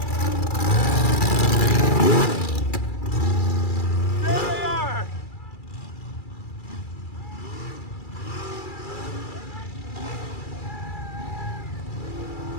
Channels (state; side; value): late; right; 2.3 ms